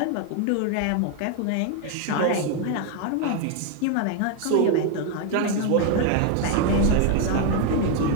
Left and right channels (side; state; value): both; different; correlation 0.01